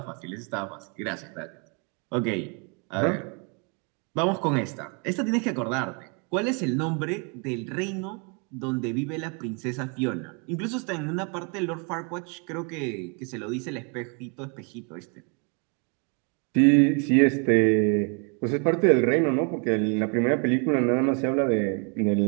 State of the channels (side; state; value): left; quieter; 36.2 dB